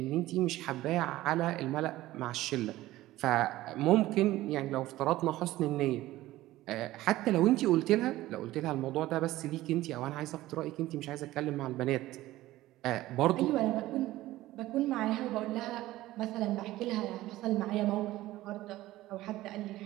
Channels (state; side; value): quieter; left; 16.4 dB